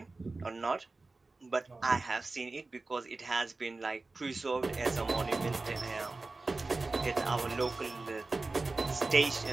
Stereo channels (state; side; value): quieter; left; 3.5 dB